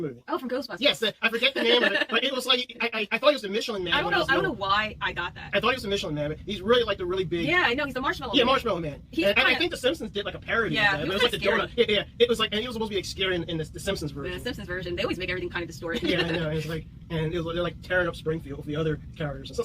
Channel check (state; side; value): identical; both; correlation 1.00